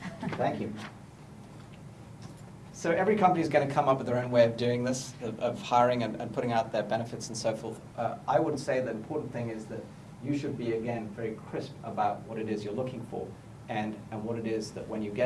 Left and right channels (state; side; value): identical; both; correlation 1.00